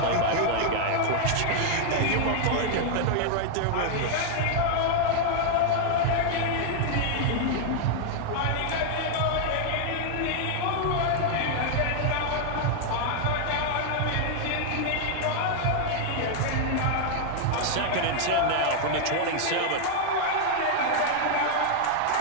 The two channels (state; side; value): different; both; correlation 0.00